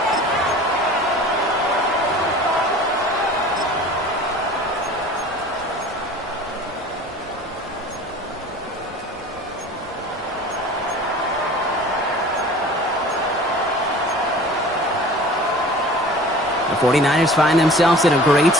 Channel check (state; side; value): normal; both; correlation 0.43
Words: The 49ers find themselves in a great